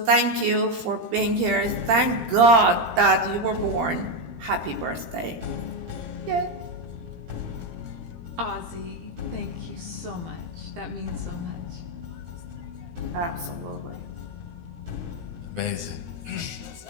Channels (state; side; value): late; left; 17 ms